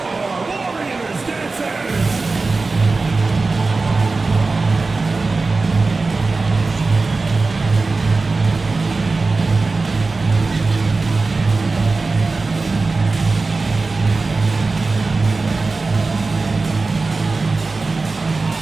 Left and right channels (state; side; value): quieter; left; 3.8 dB